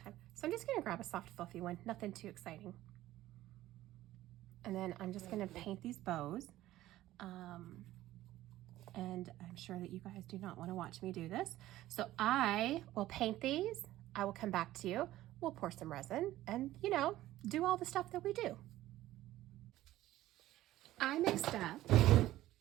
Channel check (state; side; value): quieter; left; 15.1 dB